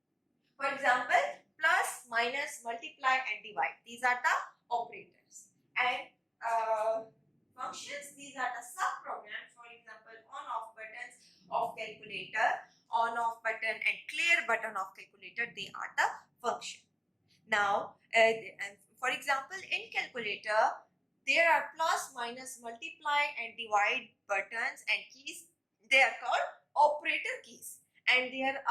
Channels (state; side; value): identical; both; correlation 1.00